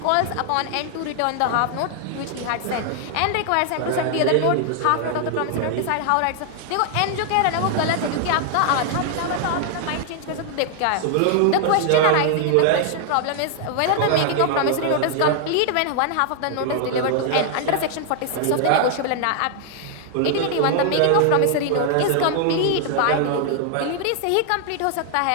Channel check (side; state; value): both; different; correlation 0.00